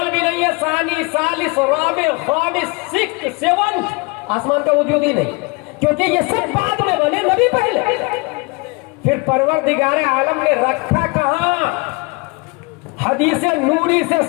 بھی نہیں ہے، ثانی، ثالث، رابع، خامس، سکس، سیونتھ، آسمان کا وجود ہی نہیں، کیونکہ یہ سب بعد میں بنے، نبی پہلے. پھر پروردگار عالم نے رکھا کہاں؟ حدیث نوری سے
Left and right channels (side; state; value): right; quieter; 28.4 dB